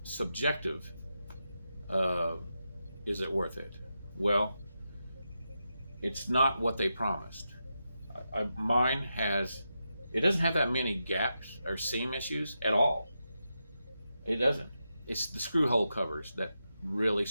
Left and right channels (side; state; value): both; inverted; correlation -0.87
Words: subjective. Is it worth it? Well, it's not what they promised. Mine has, it doesn't have that many gaps or seam issues at all. It doesn't. It's the screw hole covers that really